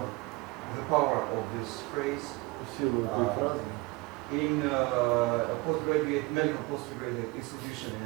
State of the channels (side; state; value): left; quieter; 24.0 dB